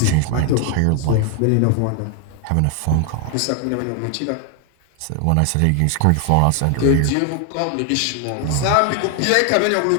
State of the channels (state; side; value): different; both; correlation 0.00